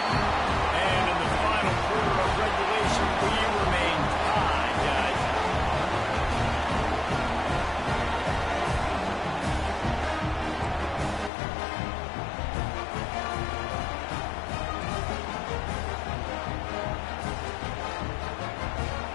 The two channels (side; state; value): right; drops out; at 11.3 s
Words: And in the final quarter of regulation, we remain tied, guys.